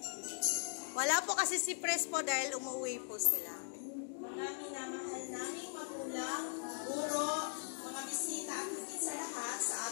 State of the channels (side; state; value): right; silent; digital silence